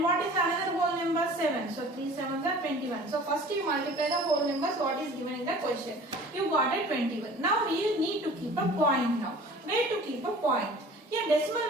what is another whole number? 7. So 3 7s are 21. So first you multiply the whole numbers what is given in the question. You got it 21. Now you need to keep a point now. Where to keep a point? Here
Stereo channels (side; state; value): both; normal; correlation 0.45